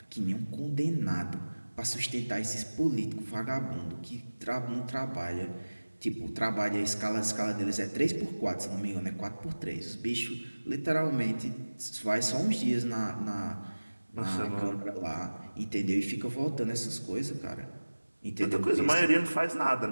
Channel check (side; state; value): both; inverted; correlation -1.00